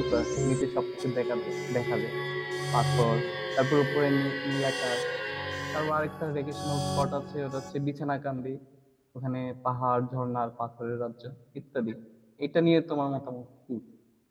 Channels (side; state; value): both; identical; correlation 1.00